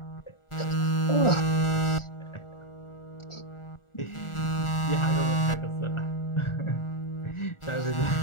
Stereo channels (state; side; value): late; right; 1.4 ms